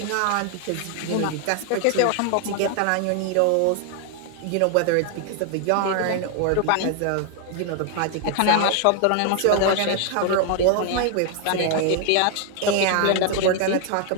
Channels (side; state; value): both; different; correlation 0.00